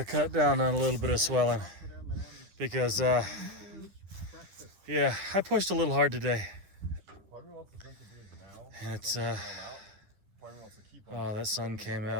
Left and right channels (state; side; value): late; left; 10 ms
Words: cut down on a little bit of swelling, because yeah, I pushed a little hard today, and it's oh, that sun came